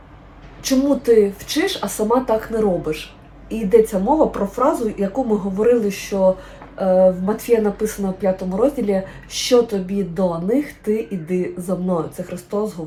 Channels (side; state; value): both; identical; correlation 1.00